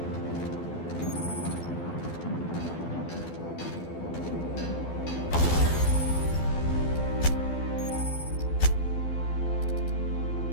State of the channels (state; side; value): late; right; 12 ms